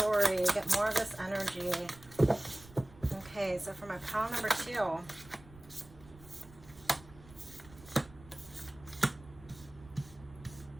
get more of this energy. Okay, so for my pile number 2,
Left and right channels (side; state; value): right; noise; rumble, 21 dB below the sound